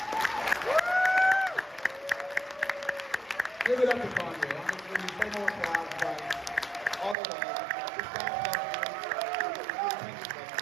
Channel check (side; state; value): left; drops out; at 7.2 s